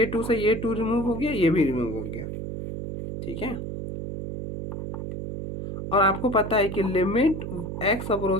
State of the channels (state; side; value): noise; right; hum, 6 dB below the sound